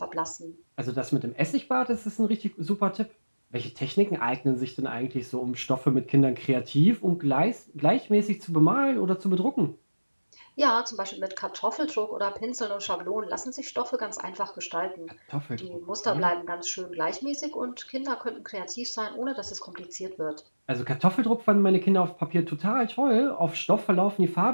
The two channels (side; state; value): both; inverted; correlation -1.00